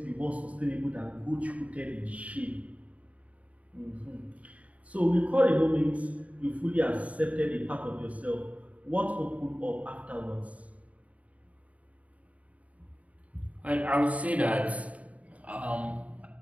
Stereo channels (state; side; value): late; left; 0.068 ms